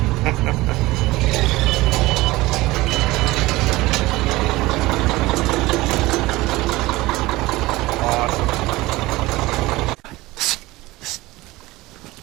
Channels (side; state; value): left; quieter; 19.6 dB